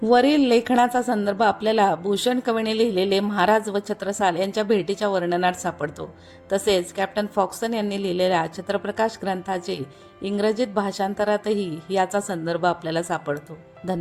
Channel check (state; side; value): identical; both; correlation 1.00